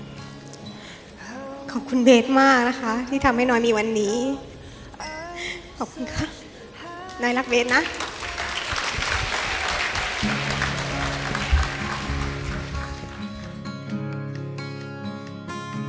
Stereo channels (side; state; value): both; identical; correlation 1.00